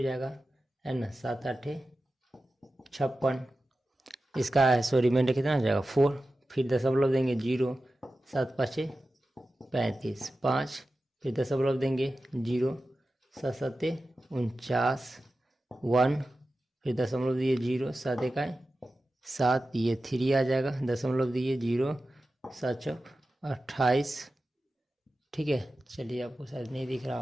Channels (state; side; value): normal; both; correlation 0.93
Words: जाएगा, है ना, 7 8 56। इसका रिमाइंडर कितना हो जाएगा 4, फिर दशमलव देंगे 0, 7 5 35 5, फिर दशमलव देंगे 0, 7 7 49 1, फिर दशमलव दिए 0, 7 1 7, ये 3 आ जाएगा, दशमलव दिए 0, 7 चौक 28। ठीक है, चलिए आपको शायद नहीं दिख रहा